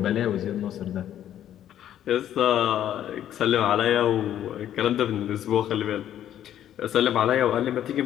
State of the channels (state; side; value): quieter; right; 11.1 dB